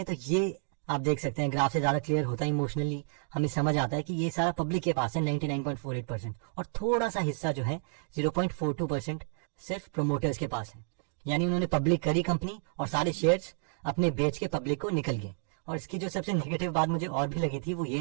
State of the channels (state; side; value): silent; left; 57 dB below the other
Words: तो ये आप देख सकते हैं ग्राफ से ज्यादा क्लियर होता है, इमोशनली हमें समझ आता है कि ये सारा पब्लिक के पास है 99.48% और थोड़ा सा हिस्सा जो है 0.42% सिर्फ प्रोमोटर्स के पास है। यानी उन्होंने पब्लिक करी कंपनी और सारे शेयर्स अपने बेच के पब्लिक को निकल गए। और इसकी जो सबसे नेगेटिव बात मुझे और भी लगी थी वो ये